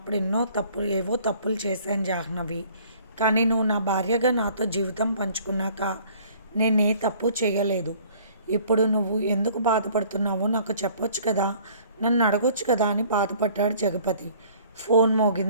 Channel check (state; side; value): inverted; both; correlation -0.54